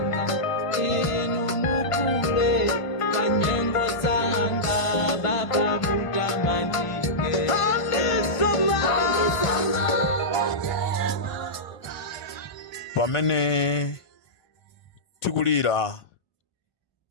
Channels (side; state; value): right; late; 1.5 ms